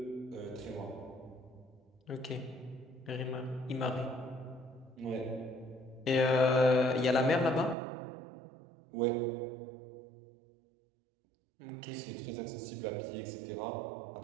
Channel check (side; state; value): left; drops out; at 7.8 s